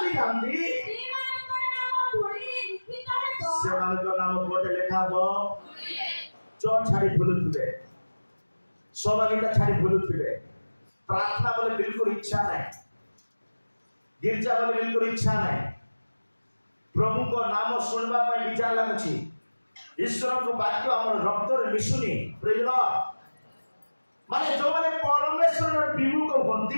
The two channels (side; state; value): both; inverted; correlation -1.00